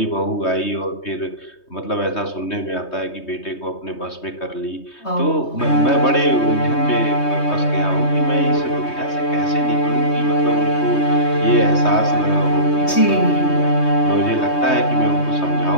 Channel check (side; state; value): right; late; 3.2 ms